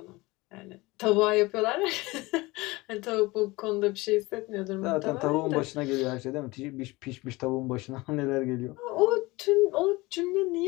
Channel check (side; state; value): right; quieter; 22.0 dB